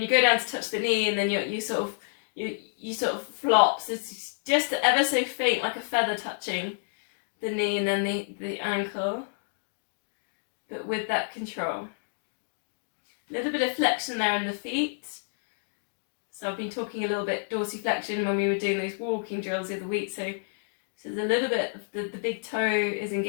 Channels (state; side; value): silent; right; digital silence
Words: go down to touch the knee, and then you sort of flop. So it's just ever so faint, like a feather touching the knee and then the ankle, but with that control. A little bit of flexion there in the feet. So I've been talking a little bit dorsiflexion when we were doing those walking drills the other week. So there's a little bit of the big toe is